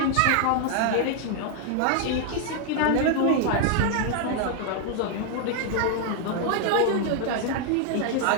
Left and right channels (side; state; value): both; different; correlation 0.00